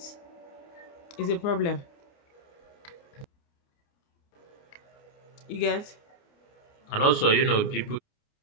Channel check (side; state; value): right; late; 29 ms